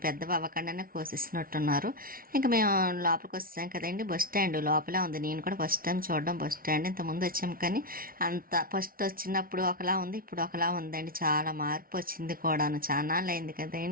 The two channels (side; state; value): left; late; 0.43 ms